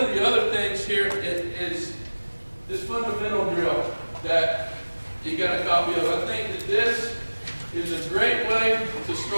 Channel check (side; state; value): both; inverted; correlation -1.00